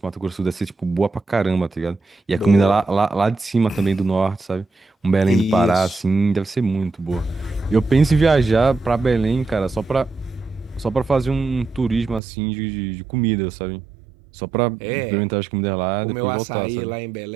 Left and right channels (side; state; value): left; drops out; at 12.2 s